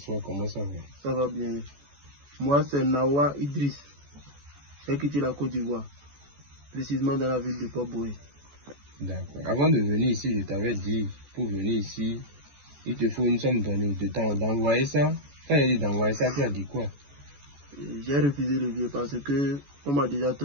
comment ça va? Ça va bien. Moi, c'est Nawa Idriss. J'ai quitté la Côte d'Ivoire, précisément dans la ville de Port-Boué. D'accord. Avant de venir ici, je t'avais dit, pour venir ici, il te faut une somme donnée de temps d'envoyer ça. Quand il dit d'envoyer ça, tu as dit quoi? J'ai refusé le vieux parce que on m'a déjà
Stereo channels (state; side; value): late; left; 14 ms